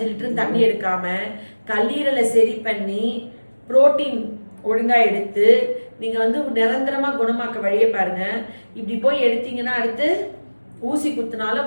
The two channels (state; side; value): inverted; both; correlation -1.00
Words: லிட்டர் தண்ணி எடுக்காம கல்லீரலை சரி பண்ணி புரோட்டீன் ஒழுங்கா எடுத்து நீங்க வந்து நிரந்தரமா குணமாக்க வழியை பாருங்க. இப்படி போய் எடுத்தீங்கன்னா அடுத்து ஊசி